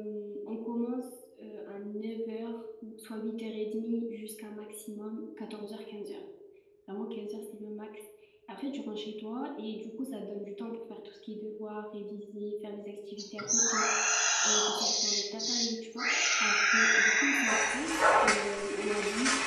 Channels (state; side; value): identical; both; correlation 1.00